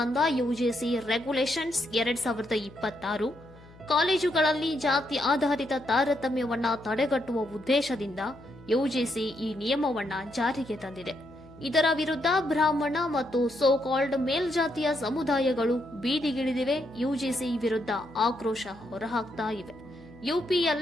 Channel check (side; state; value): left; noise; hum, 22 dB below the sound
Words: ಯುಜಿಸಿ ರೆಗ್ಯುಲೇಷನ್ಸ್ 2026 ಕಾಲೇಜುಗಳಲ್ಲಿ ಜಾತಿ ಆಧಾರಿತ ತಾರತಮ್ಯವನ್ನ ತಡೆಗಟ್ಟುವ ಉದ್ದೇಶದಿಂದ ಯುಜಿಸಿ ಈ ನಿಯಮವನ್ನ ಜಾರಿಗೆ ತಂದಿದೆ. ಇದರ ವಿರುದ್ಧ ಬ್ರಾಹ್ಮಣ ಮತ್ತು ಸೋಕಾಲ್ಡ್ ಮೇಲ್ಜಾತಿಯ ಸಮುದಾಯಗಳು ಬೀದಿಗಿಳಿದಿವೆ. ಯುಜಿಸಿ ವಿರುದ್ಧ ಆಕ್ರೋಶ ಹೊರಹಾಕ್ತಾ ಇವೆ.